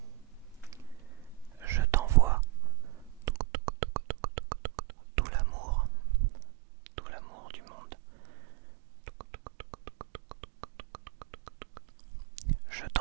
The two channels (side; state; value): left; drops out; at 3.4 s